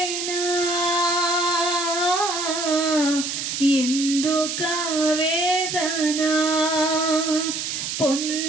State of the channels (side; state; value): right; noise; hiss, 3 dB below the sound